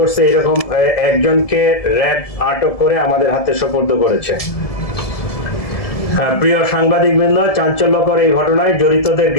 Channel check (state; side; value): late; right; 1.7 ms